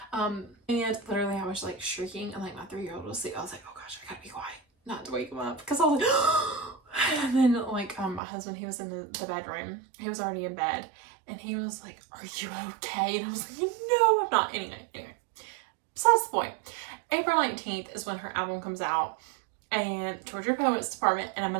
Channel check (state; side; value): drops out; left; at 8.2 s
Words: And literally I was like shrieking, and like my 3-year-old was asleep. I was like, oh gosh, I gotta be quiet not to wake him up, because I was like, and then like my husband, he was in the bedroom, he was already in bed, and he was like, are you okay? And I was like, no, I'm not. Anyway, besides the point, April 19th is when her album comes out, and Georgia Poets Department, and I'm